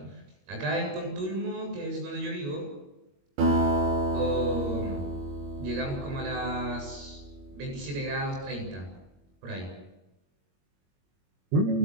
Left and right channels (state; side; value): late; left; 21 ms